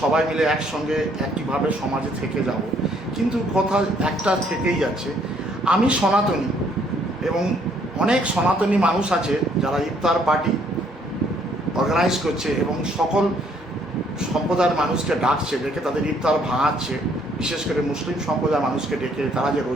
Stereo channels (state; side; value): normal; both; correlation 0.65